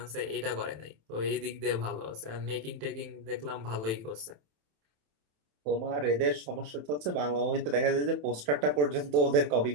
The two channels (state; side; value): late; left; 27 ms